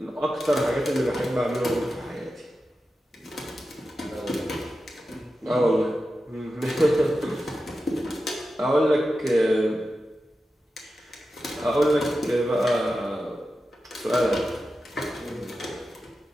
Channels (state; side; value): normal; both; correlation 0.92